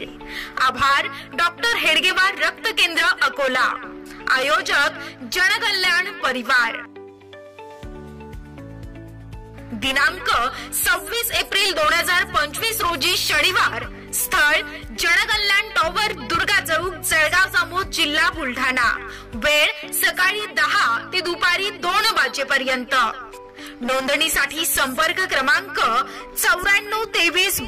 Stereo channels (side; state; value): both; identical; correlation 1.00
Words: आभार डॉक्टर हेडगेवार रक्त केंद्र अकोला। आयोजक जनकल्याण परिवार। दिनांक 26 एप्रिल 2025 रोजी शनिवार। स्थळ जनकल्याण टॉवर दुर्गा चौक जळगाव जामोद जिल्हा बुलढाणा। वेळ सकाळी 10 ते दुपारी 2 वाजेपर्यंत। नोंदणीसाठी संपर्क क्रमांक 94 23